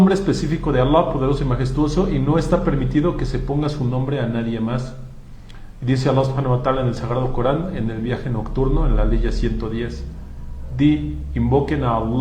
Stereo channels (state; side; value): identical; both; correlation 1.00